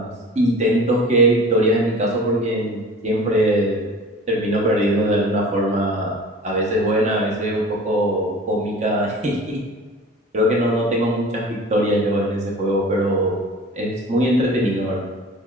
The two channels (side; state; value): both; normal; correlation 0.41